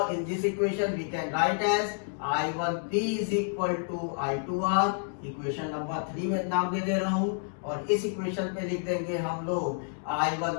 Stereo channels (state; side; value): silent; right; 58 dB below the other